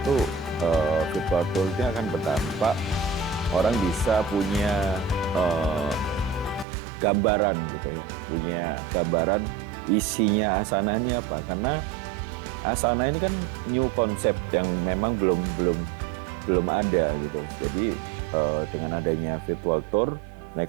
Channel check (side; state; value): left; drops out; at 6.7 s